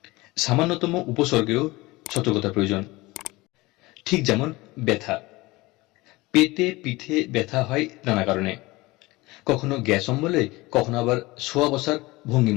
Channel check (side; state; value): right; quieter; 21.3 dB